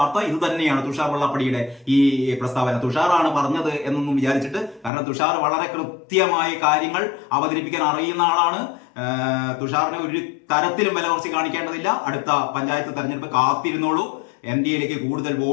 ഇത് തന്നെയാണ്. തുഷാർ വെള്ളാപ്പള്ളിയുടെ ഈ പ്രസ്താവന തുഷാറാണ് പറഞ്ഞത് എന്നൊന്നും വിചാരിച്ചിട്ട്, കാരണം തുഷാർ വളരെ കൃത്യമായ കാര്യങ്ങൾ അവതരിപ്പിക്കാൻ അറിയുന്ന ആളാണ്. തുഷാറിനെ ഒരു തരത്തിലും വില കുറച്ച് കാണിക്കേണ്ടതില്ല. അടുത്ത പഞ്ചായത്ത് തെരഞ്ഞെടുപ്പ് കാത്തിരുന്നോളൂ. NDAയിലേക്ക് കൂടുതൽ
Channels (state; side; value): drops out; right; at 4.9 s